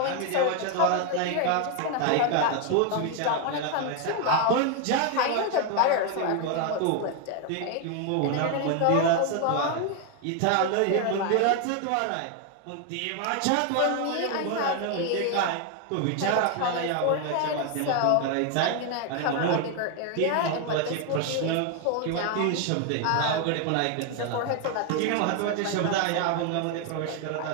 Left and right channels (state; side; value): different; both; correlation 0.01